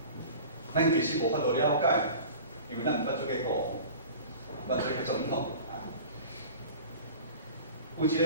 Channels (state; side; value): inverted; both; correlation -0.39